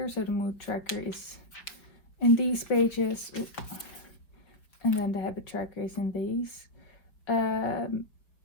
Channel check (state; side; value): late; right; 4.7 ms